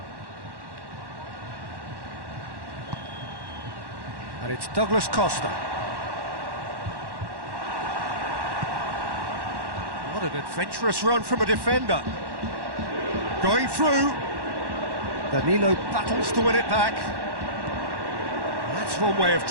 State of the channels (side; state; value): left; late; 1.1 ms